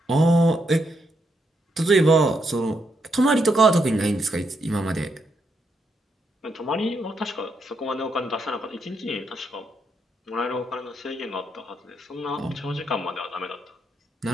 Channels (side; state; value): both; normal; correlation 0.79